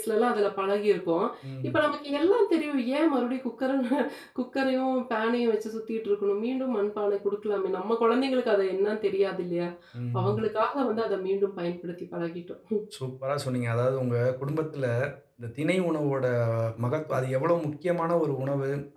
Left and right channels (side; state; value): both; identical; correlation 1.00